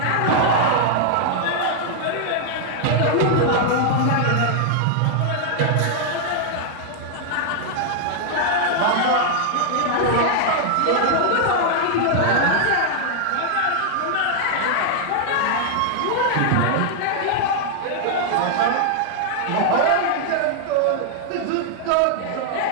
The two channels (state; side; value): different; both; correlation 0.00